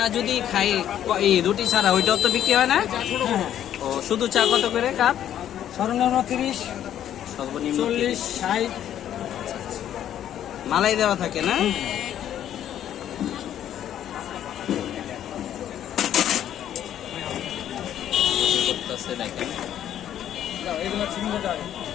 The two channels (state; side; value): quieter; right; 10.8 dB